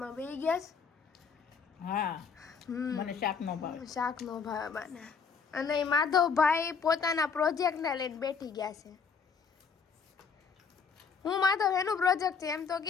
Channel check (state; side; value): quieter; right; 5.8 dB